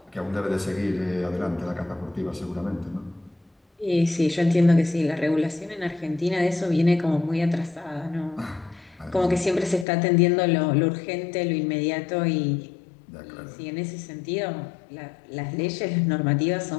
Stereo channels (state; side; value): drops out; right; at 9.9 s